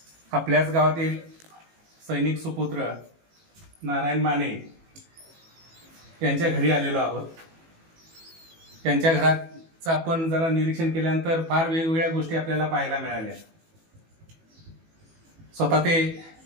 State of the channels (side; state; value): left; late; 18 ms